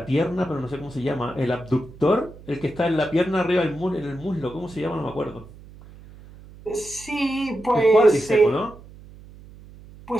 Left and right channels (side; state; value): right; noise; hum, 20 dB below the sound